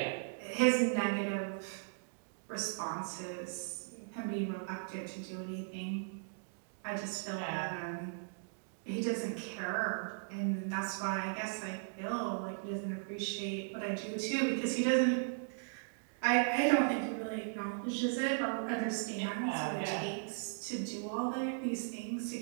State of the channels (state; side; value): silent; left; digital silence